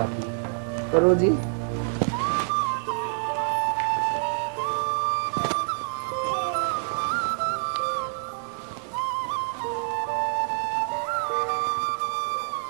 नहीं। करो जी।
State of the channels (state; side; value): silent; left; digital silence